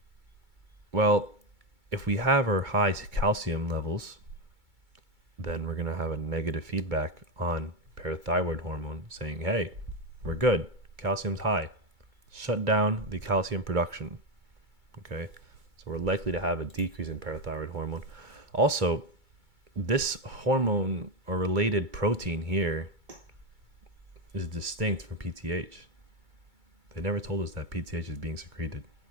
Well, if we have our high calcium levels, then we're going to have a negative feedback on parathyroid hormone saying, hey, we're good. Calcium's high. Shut down the calcium production. Okay, so we're likely to have a decrease in parathyroid hormone. Also, this hormone or related protein here is distinct from PTH. They never told us that PTH is being secreted.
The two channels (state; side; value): late; left; 2.2 ms